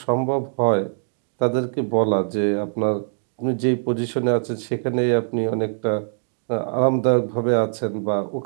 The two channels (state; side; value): silent; left; digital silence